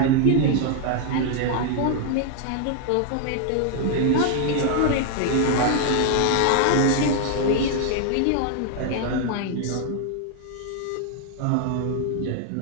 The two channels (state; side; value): different; both; correlation 0.00